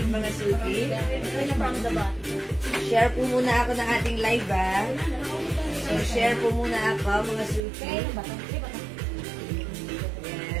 mga Suki. Share po muna ako ng ating live, ha? So, share po muna ako, mga Suki.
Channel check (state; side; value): drops out; left; at 7.6 s